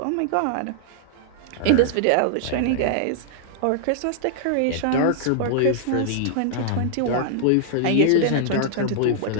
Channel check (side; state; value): both; different; correlation -0.01